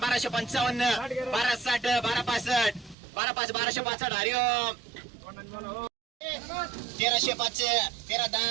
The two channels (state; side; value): drops out; left; at 3.0 s